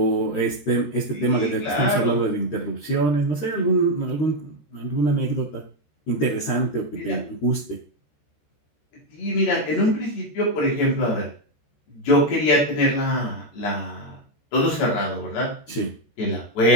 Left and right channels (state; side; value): late; right; 13 ms